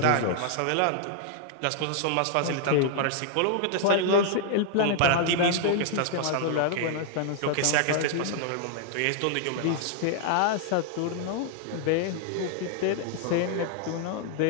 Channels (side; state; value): both; different; correlation 0.00